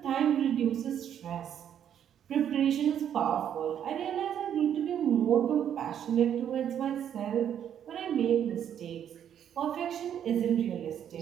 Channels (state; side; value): quieter; left; 9.4 dB